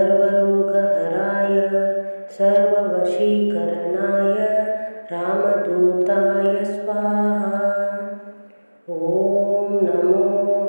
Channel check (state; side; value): inverted; both; correlation -1.00